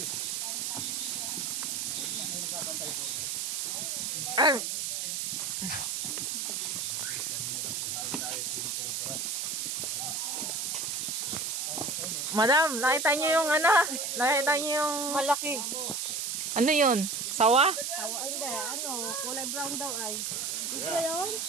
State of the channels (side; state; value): right; noise; hiss, 1 dB below the sound